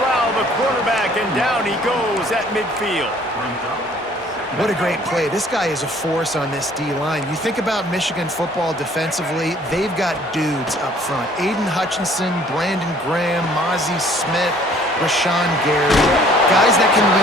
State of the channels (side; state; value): both; normal; correlation 0.57